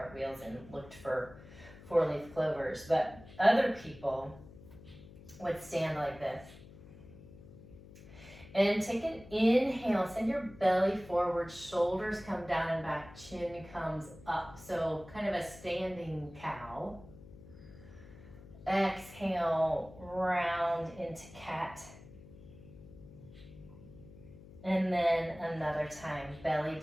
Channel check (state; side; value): noise; left; hum, 18 dB below the sound